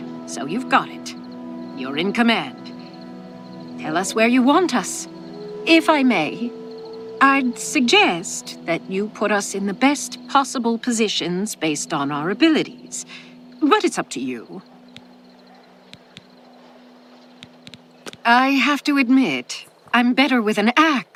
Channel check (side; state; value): both; identical; correlation 1.00